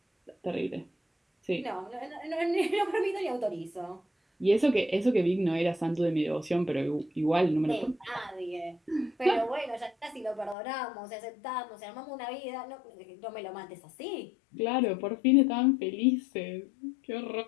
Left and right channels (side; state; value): right; drops out; at 10.6 s